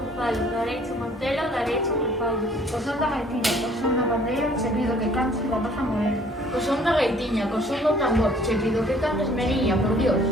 falo, dareiche montelo, dareiche un fallo. O son da gaitiña, o son da pandeira, che pido que cantes rapaza morena. Co son da gaitiña, co son do tambor, che pido que cantes meniña, por Dios.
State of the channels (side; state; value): both; normal; correlation 0.57